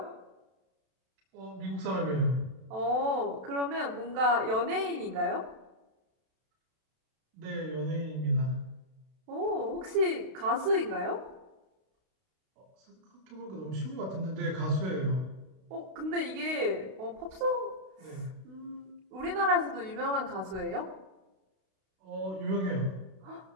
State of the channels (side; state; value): left; late; 32 ms